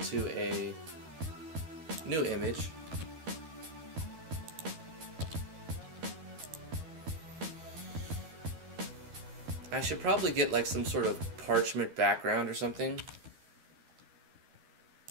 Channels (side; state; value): left; late; 12 ms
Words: a new image. I should probably get like some sort of parchment background or something.